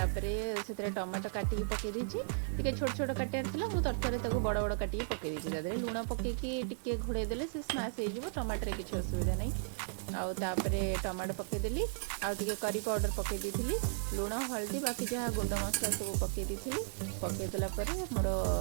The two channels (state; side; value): silent; left; digital silence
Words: से टमाटो काटिकी पकई टे छोट छोट काटार मुझे तरतर बड़ बड़ काटिकी पकई देती लुण पकईकी घोड़े देले से स्माश हो टमाटर किसी असुविधा नहीं आउे टमाटो पकईदेली आउे करी पाउडर पकई दी लुण हल्दी बाकी जहाँ गुंड मसला सब पकई दी पकईदेला मोर